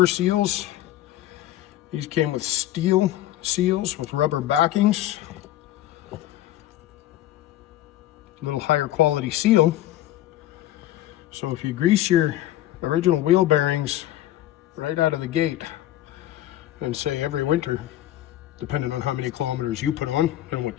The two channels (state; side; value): quieter; right; 13.8 dB